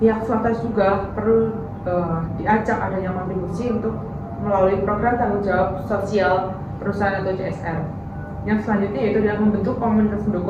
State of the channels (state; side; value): identical; both; correlation 1.00